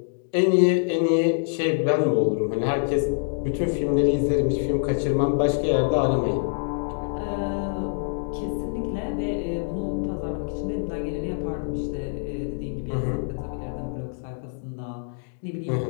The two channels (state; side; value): silent; right; digital silence